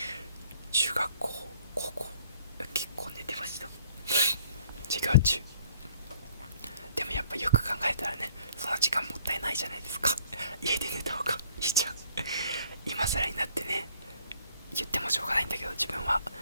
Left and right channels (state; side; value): inverted; both; correlation -0.61